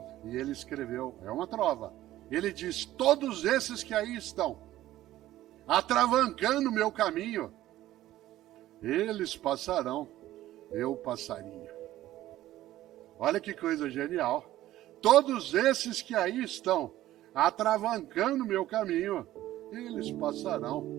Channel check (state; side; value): quieter; left; 14.5 dB